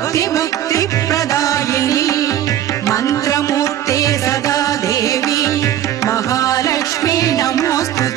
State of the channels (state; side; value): quieter; left; 11.8 dB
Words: मन्त्रमूर्ते सदा देवी महालक्ष्मी